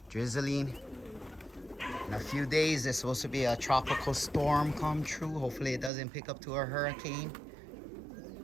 drizzling. In a few days, there's supposed to be a tropical storm come true. Hopefully it doesn't pick up to a hurricane.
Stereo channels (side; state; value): left; drops out; at 5.9 s